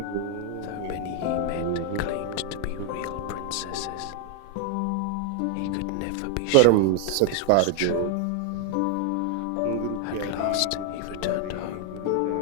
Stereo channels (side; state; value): both; different; correlation 0.00